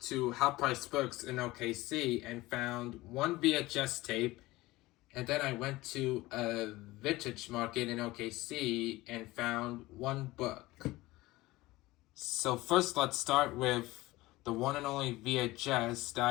to Half Price Books in OKC and found one VHS tape, and then I went to a vintage market in OKC and found one book. So first, let's start with the one and only VHS that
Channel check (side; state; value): right; quieter; 19.3 dB